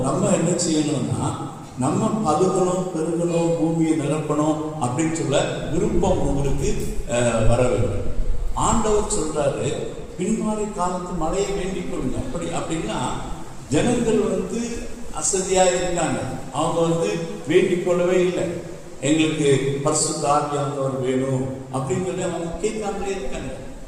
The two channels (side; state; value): both; identical; correlation 1.00